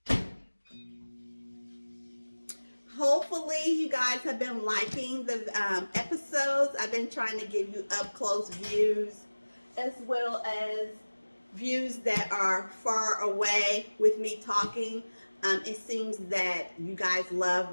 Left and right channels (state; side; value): inverted; both; correlation -1.00